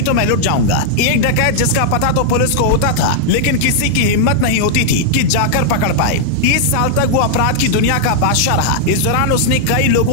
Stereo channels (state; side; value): different; both; correlation -0.01